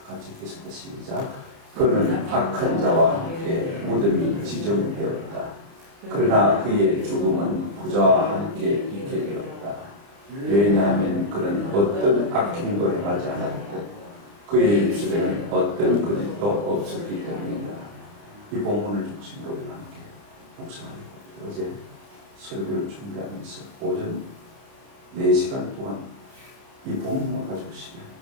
같이 읽겠습니다. 시작. 그는 악한 자와 함께 무덤이 지정되었다. 그러나 그의 죽음은 부자와 함께 있게 되었다. 왜냐하면 그는 어떤 악행도 행하지 않았고 그의 입술에는 어떤 거짓도 없었기 때문이다. 이 본문을 중심으로 우리가 함께 묵상하려고 합니다. 어제 설교를 준비하면서 오전 4시간 동안 이 본문만 가지고 시간을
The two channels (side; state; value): left; late; 30 ms